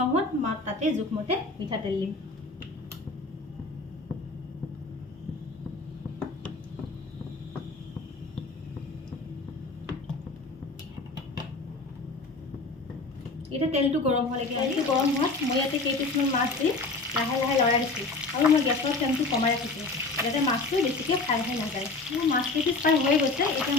হোৱাত তাতে জোখমতে মিঠাতেল দিম। এতিয়া তেলটো গৰম হোৱা লাগে। তেলটো গৰম হোৱাত মই ইয়াতে কেইপিচমান মাছ দি লাহে লাহে লৰাই দিছোঁ আৰু মই গেছৰ ফ্লেমটো কমাই ৰাখিছোঁ যাতে মাছটো বেছিকৈ ফ্ৰাই হৈ নাযায়। মোৰ মাছ কেইপিচ ফ্ৰাই হৈ গৈছে। এতিয়া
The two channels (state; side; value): quieter; right; 3.5 dB